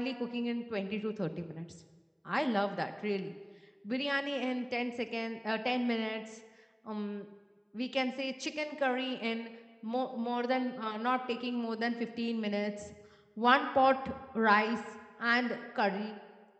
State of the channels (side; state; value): both; identical; correlation 1.00